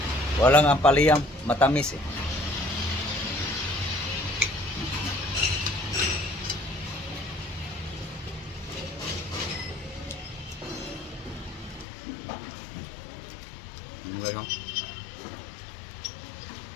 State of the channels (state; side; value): drops out; right; at 11.9 s